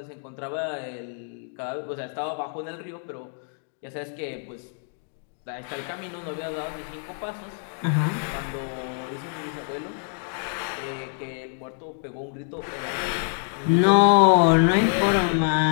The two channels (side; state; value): right; silent; 58 dB below the other